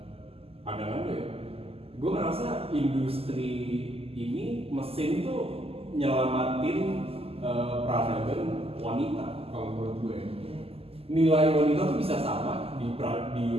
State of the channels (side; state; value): left; late; 0.29 ms